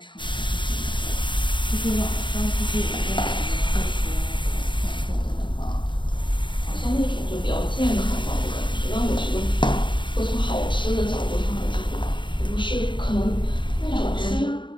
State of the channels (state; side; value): late; right; 0.23 ms